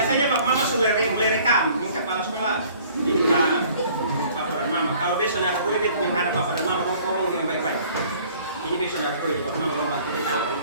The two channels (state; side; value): inverted; both; correlation -0.54